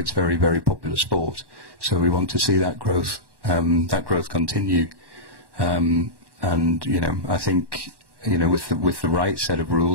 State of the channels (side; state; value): left; late; 1.1 ms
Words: very, very popular sport, so we want to see that growth continue. And you know, I think, you know, with the right set of